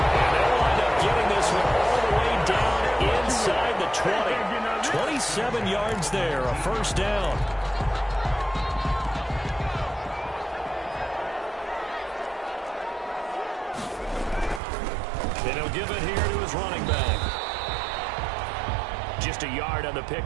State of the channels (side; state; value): left; drops out; at 14.6 s